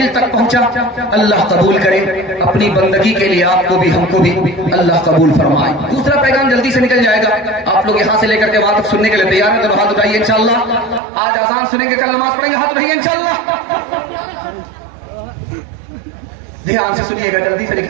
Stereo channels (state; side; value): drops out; left; at 11.0 s